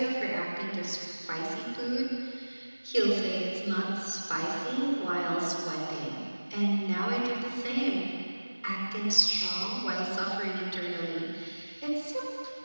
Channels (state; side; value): inverted; both; correlation -1.00